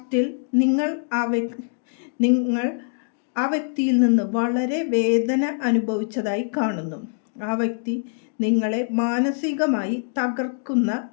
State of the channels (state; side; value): silent; right; digital silence